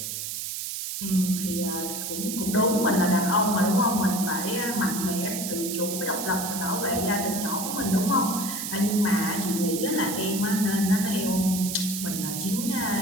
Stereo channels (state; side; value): noise; right; hiss, 5 dB below the sound